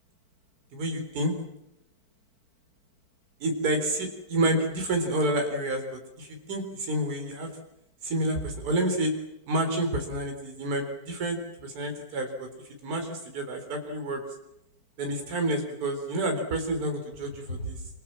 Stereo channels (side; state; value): left; late; 4.5 ms